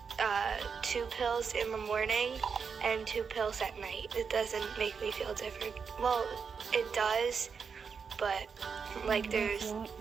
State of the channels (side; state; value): left; quieter; 5.9 dB